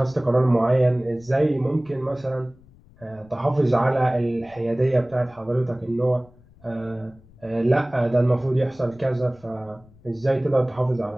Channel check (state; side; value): noise; left; rumble, 26 dB below the sound